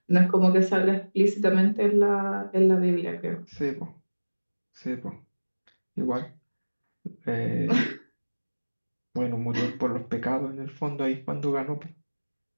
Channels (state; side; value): inverted; both; correlation -1.00